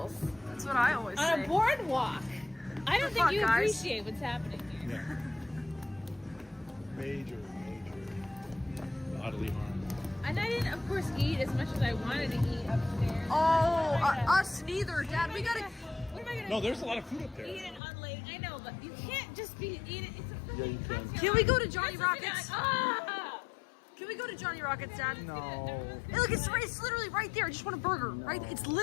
That's what I always say. On a boardwalk. I don't think you guys? appreciate what's happening here. Major. bodily harm. And I didn't, of course, eat as much as I wanted to eat upstairs. Us neither, Dad. We gotta. What am I gonna No, there's a lot of food up there. eat and unlate? I know, but you can't just be eating. It's a Yeah, you can. Can we go to Johnny That's what Rockets? you're like, Can we go to Johnny Rockets, Dad? No. Hey, look, it's literally right there. I just want a burger. Right? It's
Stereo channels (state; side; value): drops out; right; at 17.8 s